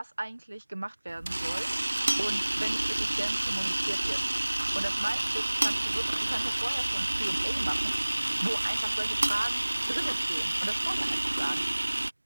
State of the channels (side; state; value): both; inverted; correlation -1.00